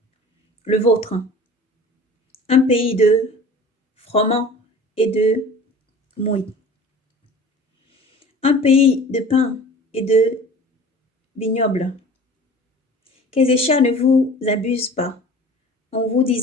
le vôtre, un pays de froment et de mouille, un pays de pain et de vignoble. Qu'Ézéchias ne vous abuse pas en vous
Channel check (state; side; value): normal; both; correlation 0.42